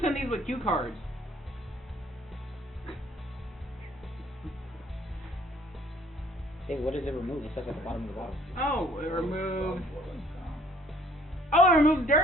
send these with cue cards. Hey, what does it remove? It says at the bottom of the bottle. Oh, it removes. Oh, it removes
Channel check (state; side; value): normal; both; correlation 0.58